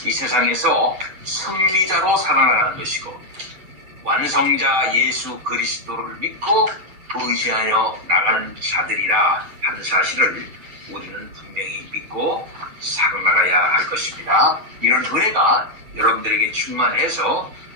이 세상에서 승리자로 살아나가는 것이고 완성자 예수 그리스도를 믿고 의지하여 나가는 자들이라 하는 사실을 우리는 분명히 믿고 살아나가야 할 것입니다. 이런 은혜가 여러분들에게 충만해서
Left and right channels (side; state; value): left; late; 7.6 ms